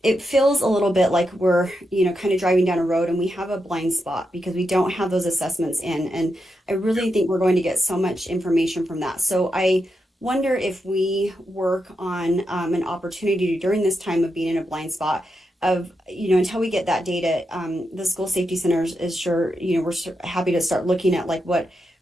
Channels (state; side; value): normal; both; correlation 0.85